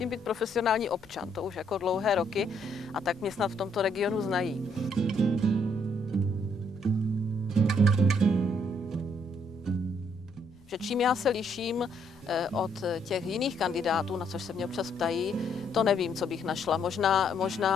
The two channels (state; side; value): noise; left; rumble, 27 dB below the sound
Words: být profesionální občan. To už jako dlouhé roky a tak mě snad v tomto regionu znají. Že čím já se liším od těch jiných kandidátů, na což se mě občas ptají, to nevím, co bych našla.